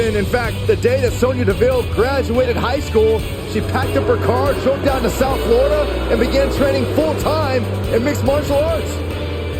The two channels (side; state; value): both; identical; correlation 1.00